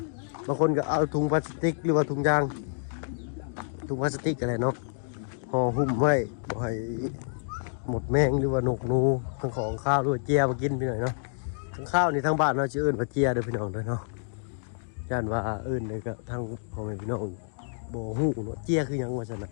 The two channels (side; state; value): right; silent; digital silence